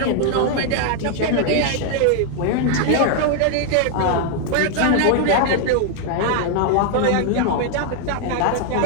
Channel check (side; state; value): both; different; correlation 0.00